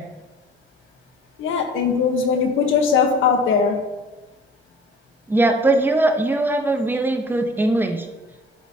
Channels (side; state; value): both; normal; correlation 0.46